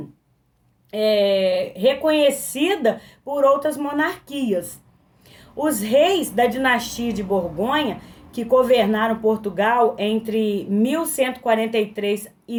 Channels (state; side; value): identical; both; correlation 1.00